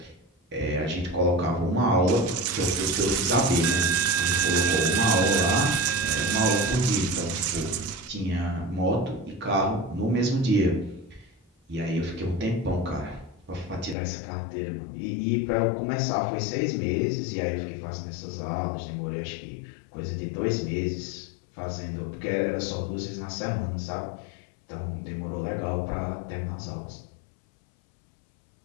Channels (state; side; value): drops out; right; at 14.0 s